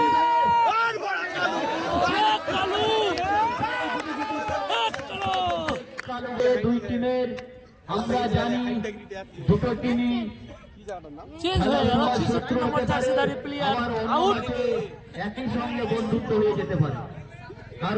দুই টিমের আমরা জানি দুটো টিমই চেঞ্জ হয়ে গেল 66 নম্বর জার্সিধারী প্লেয়ার আউট। একই সঙ্গে বন্ধুত্ব হয়ে যেতে পারে,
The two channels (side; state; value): both; identical; correlation 1.00